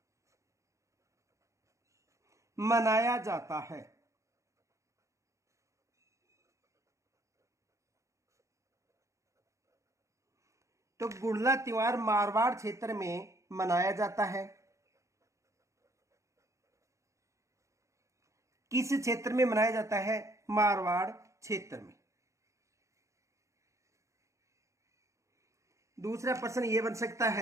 मनाया जाता है? तो गुड़ला त्योहार मारवाड़ क्षेत्र में मनाया जाता है। किस क्षेत्र में मनाया जाता है? मारवाड़ क्षेत्र में। दूसरा प्रश्न यह बन सकता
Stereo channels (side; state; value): left; late; 0.15 ms